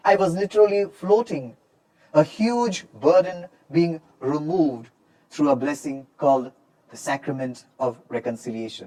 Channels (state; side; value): identical; both; correlation 1.00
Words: I was literally floating, a huge burden being removed through a blessing called the Sacrament of